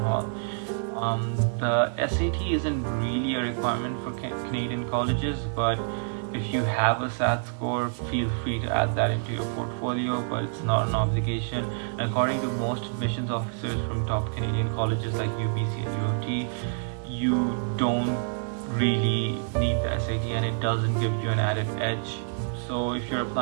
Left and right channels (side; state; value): left; silent; 60 dB below the other